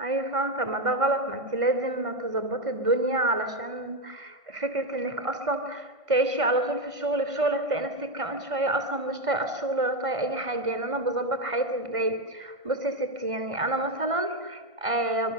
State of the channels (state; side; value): late; left; 1.5 ms